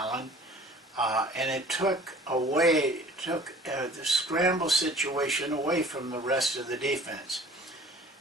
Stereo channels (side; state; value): both; normal; correlation 0.48